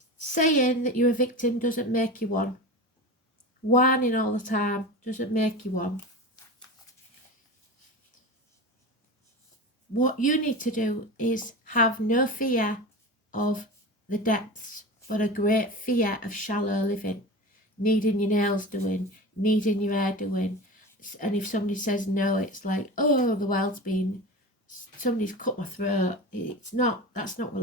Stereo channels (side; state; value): both; normal; correlation 0.29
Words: Saying that you're a victim doesn't make you one. Whining all the time doesn't make you one. What you need to do is have no fear of the depths, but a great fear of shallow living. Needing your nails doing, needing your hair doing. And if somebody says no, it's like, oh, the world's been, somebody's cut my throat. It's not, that's not what